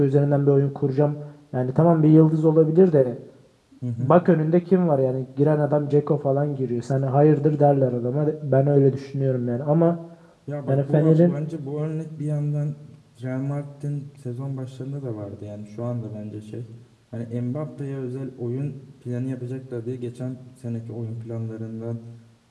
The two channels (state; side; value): identical; both; correlation 1.00